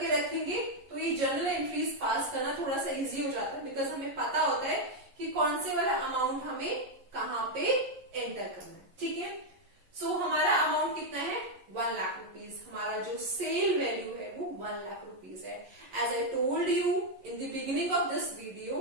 रखेंगे तो ये जर्नल एंट्रीज पास करना थोड़ा सा इजी हो जाता है, बिकॉज हमें पता होता है कि कौन से वाला अमाउंट हमें कहां पे एंटर करना है, ठीक है। सो हमारा अमाउंट कितना है? 1 लाख रुपीज। हमारा जो सेल वैल्यू है वो 1 लाख रुपीज है। As I told you in the beginning of this video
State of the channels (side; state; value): left; late; 11 ms